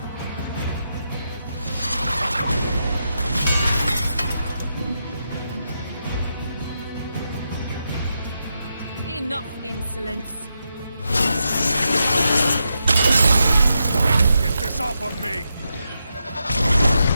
Enough insolence. Get this off of me!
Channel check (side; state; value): both; inverted; correlation -0.85